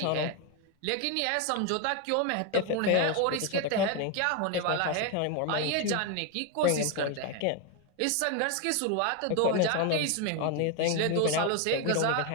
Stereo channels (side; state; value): both; different; correlation 0.01